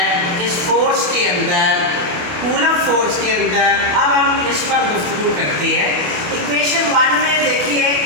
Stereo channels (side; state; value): left; late; 28 ms